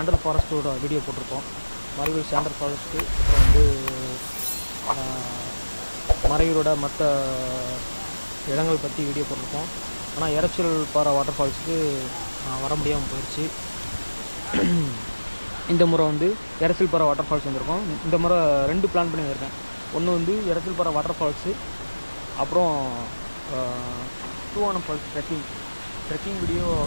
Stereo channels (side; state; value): both; inverted; correlation -1.00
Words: ஃபாரஸ்ட்டோட வீடியோ போட்டிருக்கோம். மறையூர் சாண்டல் ஃபாரஸ்ட்டு, அப்புறம் வந்து மறையூரோட மற்ற இடங்கள் பற்றி வீடியோ போட்டிருக்கோம். ஆனால் எரச்சில் பாறை வாட்டர் ஃபால்ஸுக்கு வர முடியாமல் போயிடுச்சு. இந்த முறை வந்து எரச்சில் பாறை வாட்டர் ஃபால்ஸ் வந்திருக்கோம். இந்த முறை 2 பிளான் பண்ணி வந்திருக்கேன். ஒன்று வந்து எரச்சில் பாறை வாட்டர் ஃபால்ஸு, அப்புறம் Thoovanam falls trekking video